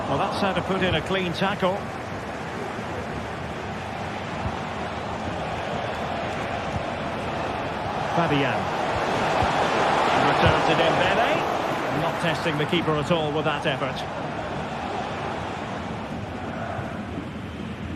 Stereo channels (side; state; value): both; identical; correlation 1.00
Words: Well, that's how to put in a clean tackle. Fabian. Return to Dembele. Not testing the keeper at all with that effort.